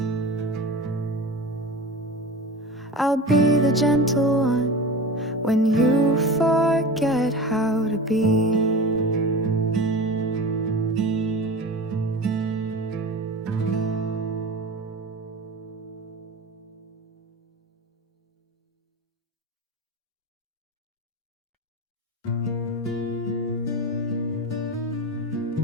I'll be the gentle one when you forget how to be.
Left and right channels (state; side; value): normal; both; correlation 0.31